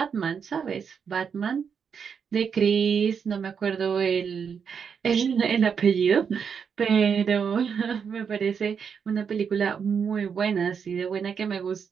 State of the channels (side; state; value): left; quieter; 6.7 dB